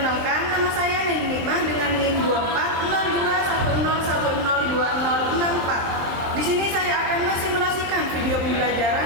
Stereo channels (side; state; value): left; late; 23 ms